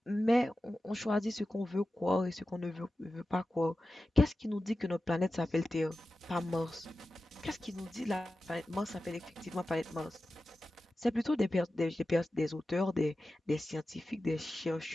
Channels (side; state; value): both; normal; correlation 0.93